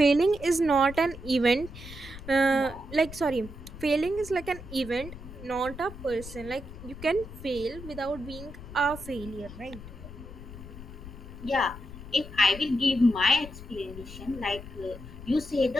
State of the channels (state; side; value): noise; left; rumble, 13 dB below the sound